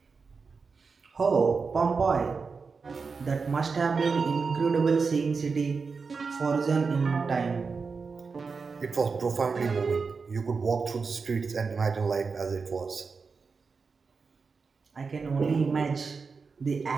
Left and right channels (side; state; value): left; quieter; 4.9 dB